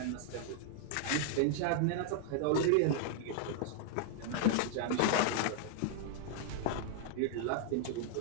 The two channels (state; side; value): different; both; correlation -0.01